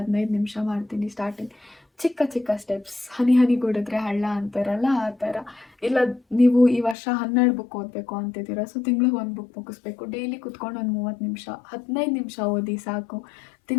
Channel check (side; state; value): right; drops out; at 7.0 s